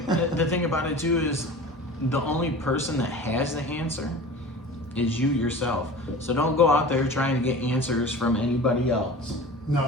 thing about it too is the only person that has the answer is you yourself. So don't go out there trying to get answers from anybody else.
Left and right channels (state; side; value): normal; both; correlation 0.37